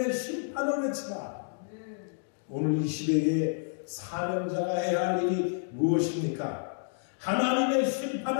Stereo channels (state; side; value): silent; right; digital silence